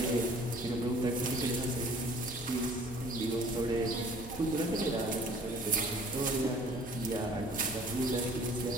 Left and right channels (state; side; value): normal; both; correlation 0.52